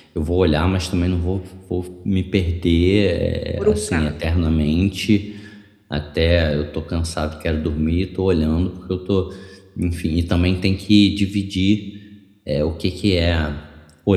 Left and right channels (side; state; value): both; identical; correlation 1.00